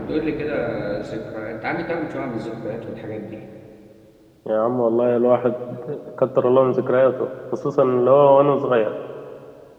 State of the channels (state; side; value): identical; both; correlation 1.00